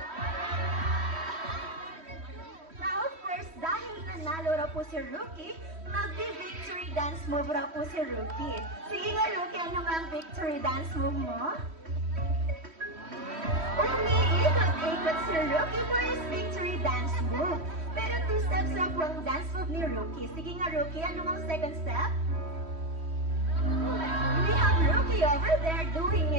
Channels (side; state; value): left; late; 3.1 ms